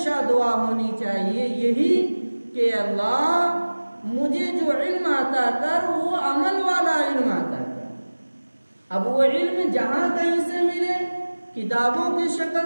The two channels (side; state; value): both; inverted; correlation -1.00